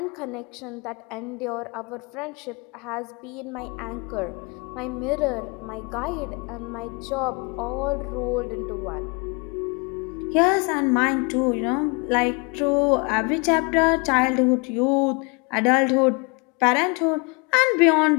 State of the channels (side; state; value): right; quieter; 31.5 dB